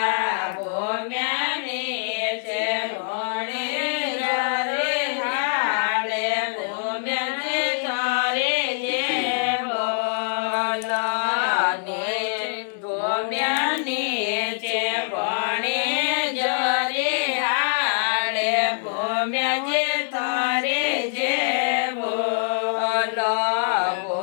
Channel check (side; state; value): right; silent; digital silence